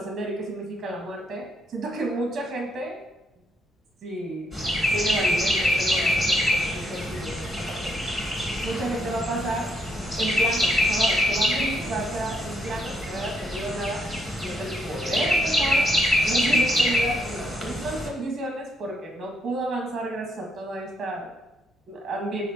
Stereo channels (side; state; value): both; normal; correlation 0.75